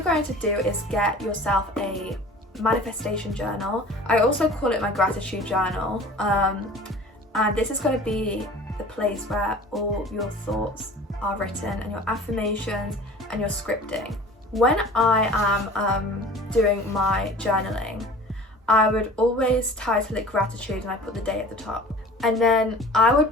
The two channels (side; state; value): both; normal; correlation 0.43